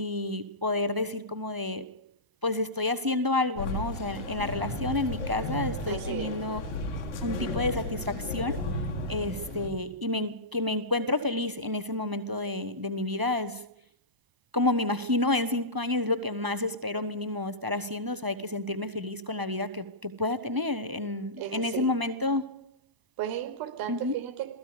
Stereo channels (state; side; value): late; left; 1.0 ms